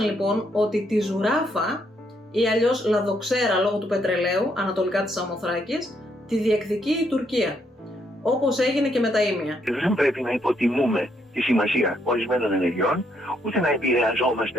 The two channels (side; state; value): both; normal; correlation 0.74